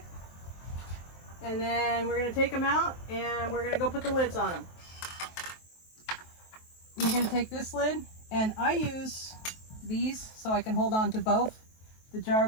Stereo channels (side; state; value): right; late; 23 ms